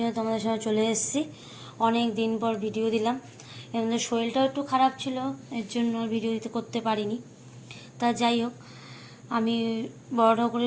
তোমাদের সঙ্গে চলে এসেছি। অনেক দিন পর ভিডিও দিলাম। এর মধ্যে শরীরটাও একটু খারাপ ছিল, এর জন্য ভিডিও দিতে করতে পারিনি। তা যাই হোক, আমি বড়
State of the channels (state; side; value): identical; both; correlation 1.00